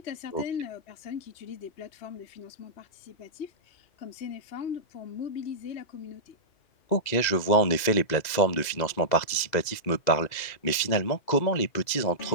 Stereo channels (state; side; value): late; right; 2.0 ms